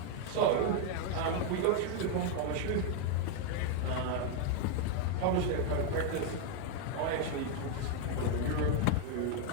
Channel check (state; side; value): different; both; correlation 0.00